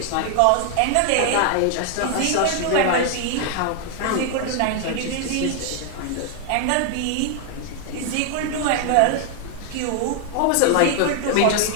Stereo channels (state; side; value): different; both; correlation 0.00